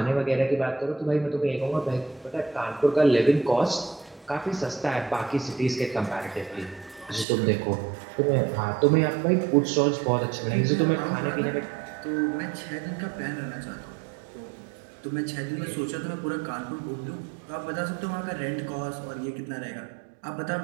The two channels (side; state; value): left; drops out; at 7.2 s